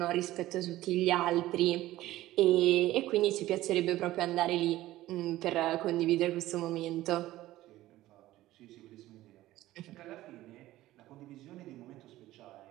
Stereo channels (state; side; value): quieter; left; 15.8 dB